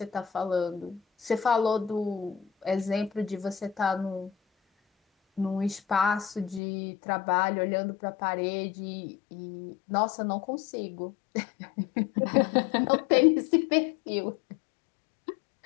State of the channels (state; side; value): drops out; right; at 6.6 s